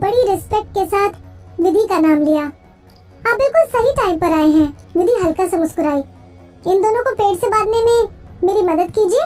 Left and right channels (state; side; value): identical; both; correlation 1.00